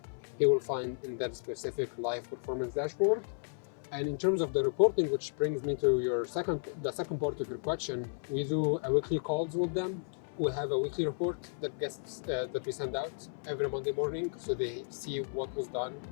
he will find in that specific live performance dashboard. And in terms of the reporting, which brings me to the second part of your question, we do a weekly calls with them. We have a weekly report that we send out every Monday morning, so they see what was done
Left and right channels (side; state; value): right; silent; 55 dB below the other